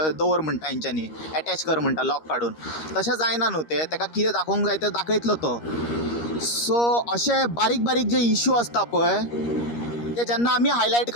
दवर म्हणटा, तेंच्यांनी एटॅच कर म्हणटा लॉक काडून. तशें जायना न्हू तें, ताका कितें दाखोवंक जाय तें दाखयतलो तो. सो अशे बारीक बारीक जे इश्यू आसता पळय ते जेन्ना आमी हायलायट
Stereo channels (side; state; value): right; late; 13 ms